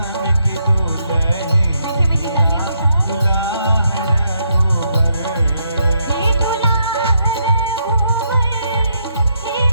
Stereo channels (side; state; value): both; inverted; correlation -0.77